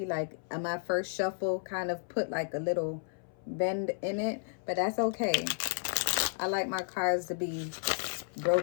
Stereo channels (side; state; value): right; silent; 56 dB below the other